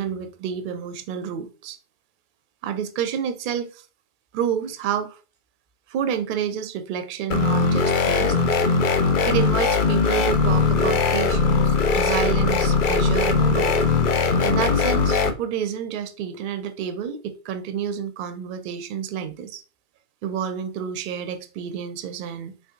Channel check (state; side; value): late; left; 2.3 ms